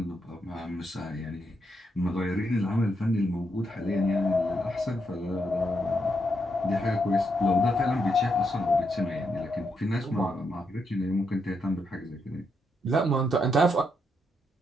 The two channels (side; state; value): both; normal; correlation 0.80